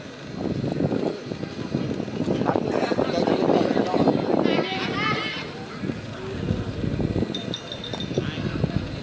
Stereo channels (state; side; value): identical; both; correlation 1.00